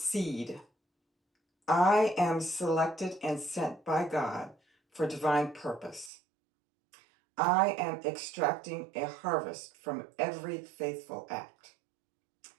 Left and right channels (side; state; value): left; drops out; at 6.1 s